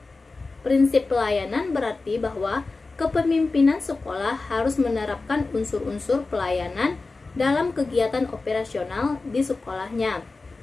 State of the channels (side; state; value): right; quieter; 3.7 dB